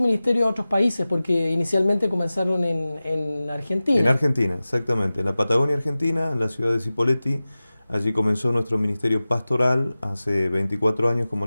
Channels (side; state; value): both; inverted; correlation -0.97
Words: a otros países porque inicialmente comenzaron en En Argentina. Argentina, exactamente, en la Patagonia Argentina, en la ciudad de Cipolletti, allí comenzó nuestro ministerio pastoral hace 24 años, como